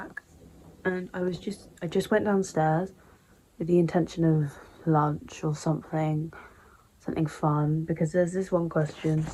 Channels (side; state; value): both; identical; correlation 1.00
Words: and I just went downstairs with the intention of lunch or something fun, because there's this one question